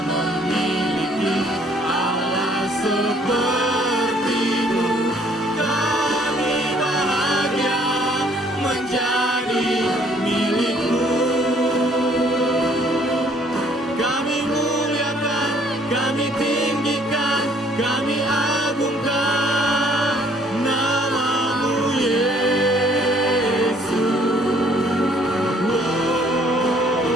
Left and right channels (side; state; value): both; normal; correlation 0.61